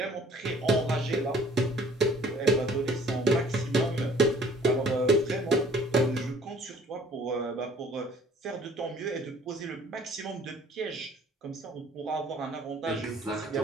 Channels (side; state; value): both; normal; correlation 0.55